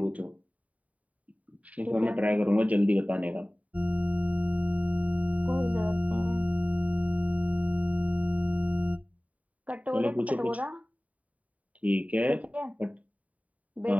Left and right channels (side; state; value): left; late; 0.069 ms